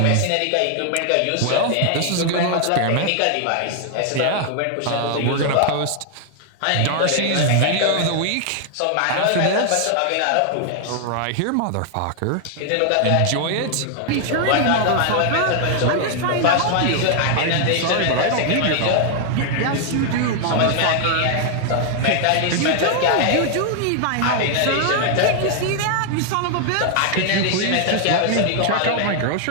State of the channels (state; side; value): different; both; correlation 0.00